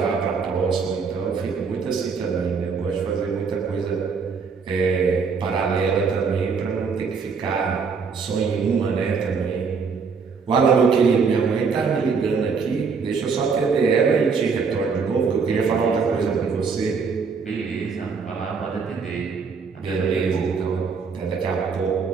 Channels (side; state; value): left; quieter; 5.4 dB